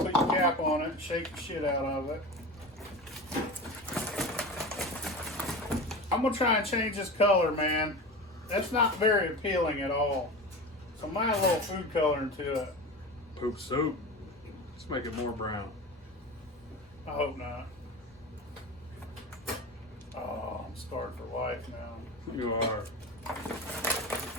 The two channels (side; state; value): both; normal; correlation 0.29